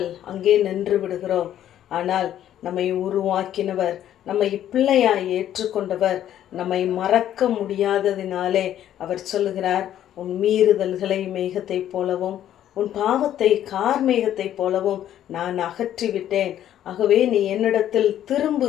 அங்கே நின்று விடுகிறோம். ஆனால் நம்மை உருவாக்கினவர், நம்மை பிள்ளையாய் ஏற்றுக்கொண்டவர் நம்மை மறக்க முடியாததினாலே அவர் சொல்லுகிறார், உன் மீறுதல்களை மேகத்தை போலவும் உன் பாவத்தை கார்மேகத்தை போலவும் நான் அகற்றிவிட்டேன். ஆகவே நீ என்னிடத்தில்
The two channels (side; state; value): right; quieter; 11.3 dB